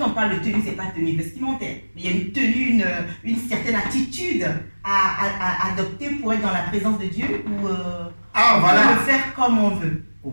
parle de tenue, ce n'est pas tenue vestimentaire, mais il y a une tenue, une certaine attitude à adopter pour être dans la présence de Dieu ou voilà. le faire comme on veut.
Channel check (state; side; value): inverted; both; correlation -1.00